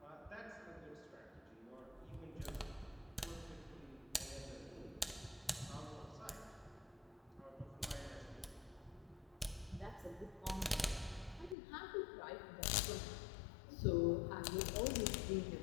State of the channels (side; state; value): right; drops out; at 11.6 s